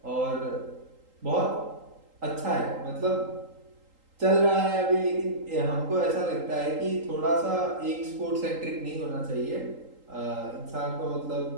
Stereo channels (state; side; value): late; left; 3.8 ms